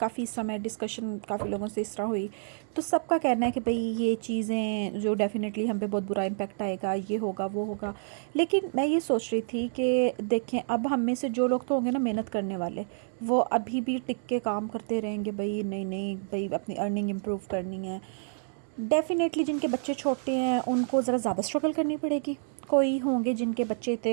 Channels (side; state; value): left; silent; digital silence